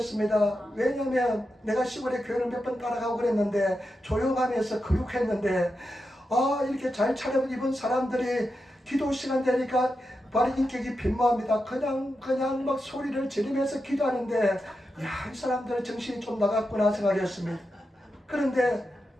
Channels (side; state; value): both; normal; correlation 0.88